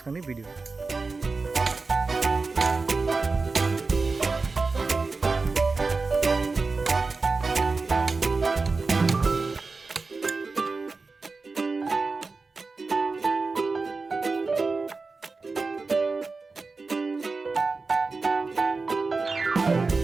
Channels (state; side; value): quieter; left; 4.0 dB